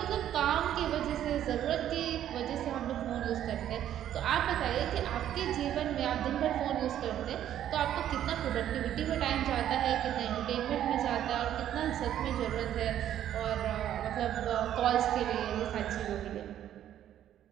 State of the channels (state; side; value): quieter; left; 11.1 dB